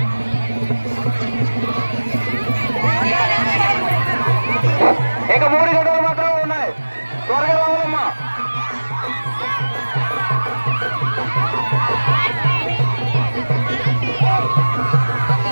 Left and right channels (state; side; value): inverted; both; correlation -1.00